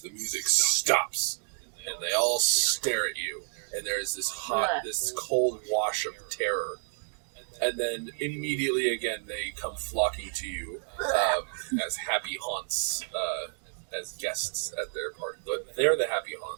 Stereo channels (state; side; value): silent; left; digital silence